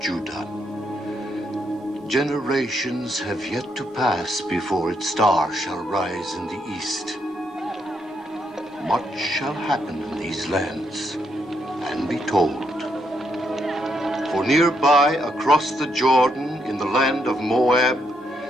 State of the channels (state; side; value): normal; both; correlation 0.77